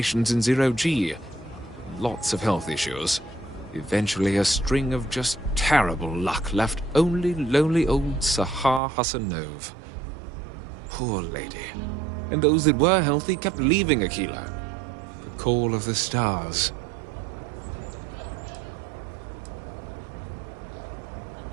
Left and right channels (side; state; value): left; drops out; at 8.8 s